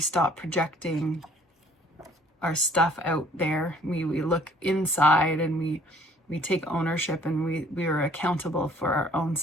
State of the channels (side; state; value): both; normal; correlation 0.57